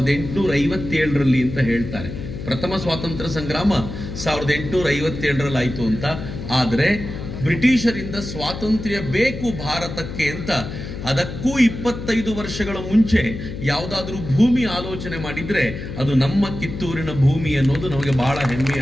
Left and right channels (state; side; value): noise; left; hum, 8 dB below the sound